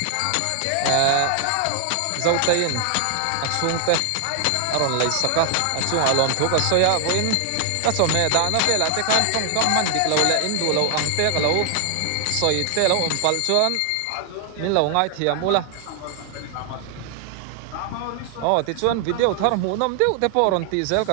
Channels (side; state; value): both; different; correlation 0.00